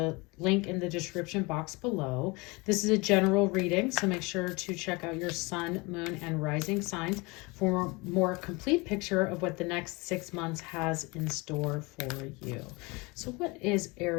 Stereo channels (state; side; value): quieter; right; 26.1 dB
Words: link in the description box below. This is a general reading, so make sure to check out your sun, moon, and rising signs for a more complete picture of what the next 6 months has in store for you. So what is